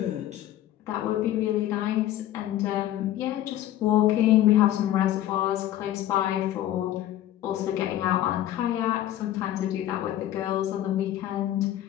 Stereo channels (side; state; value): right; quieter; 12.9 dB